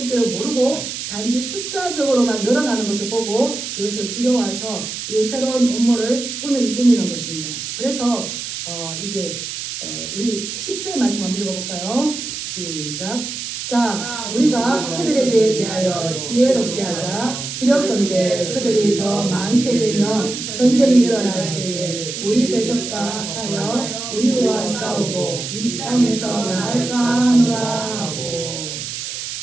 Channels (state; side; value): noise; right; hiss, 6 dB below the sound